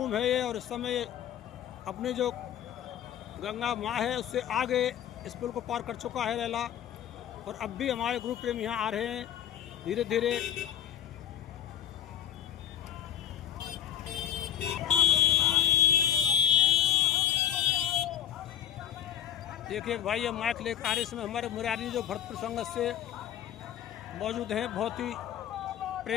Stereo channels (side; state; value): right; quieter; 10.1 dB